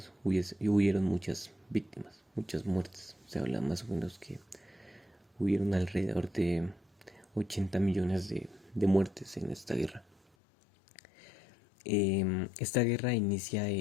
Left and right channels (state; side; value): drops out; right; at 10.2 s